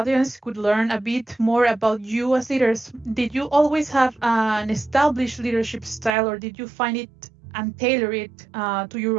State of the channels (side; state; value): left; drops out; at 6.1 s